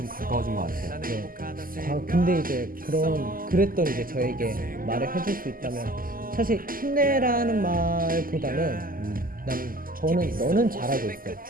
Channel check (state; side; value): late; left; 0.41 ms